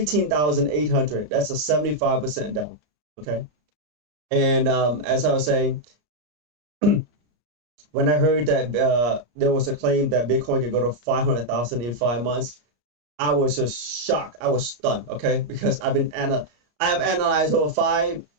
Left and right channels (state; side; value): late; left; 33 ms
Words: That's a 75% down. Okay, and as I was saying, when I heard that there was a claim that Bitcoin could go to 500,000 in 5 months, I was just shocked. I was stunned. Okay, because I have analyzed over